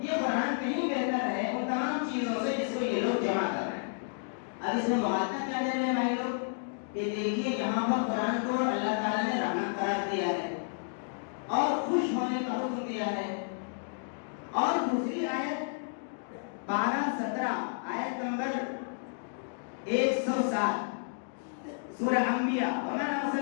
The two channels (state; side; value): silent; right; digital silence